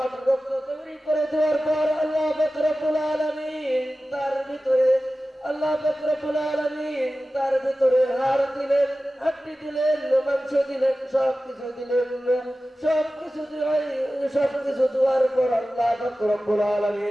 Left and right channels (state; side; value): normal; both; correlation 0.95